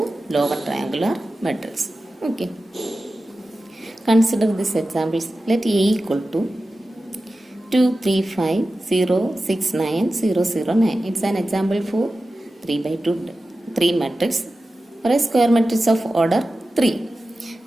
lower triangular matrix. Okay. Consider these examples. Let A equal to 2, 3, 5, 0, 6, 9, 0, 0, 9. It's an example for 3 by 2, 3 matrix or a square matrix of order 3.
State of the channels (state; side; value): normal; both; correlation 0.94